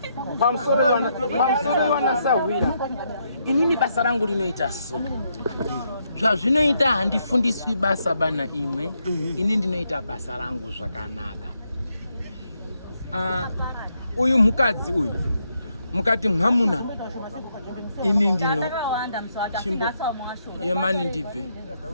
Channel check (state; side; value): inverted; both; correlation -0.78